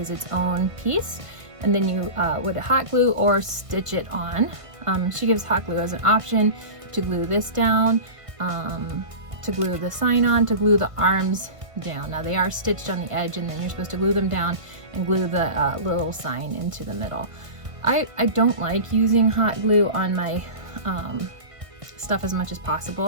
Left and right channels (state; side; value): late; left; 1.7 ms